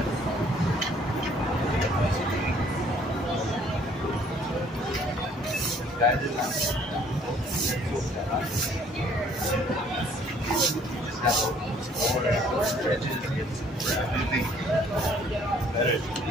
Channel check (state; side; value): normal; both; correlation 0.60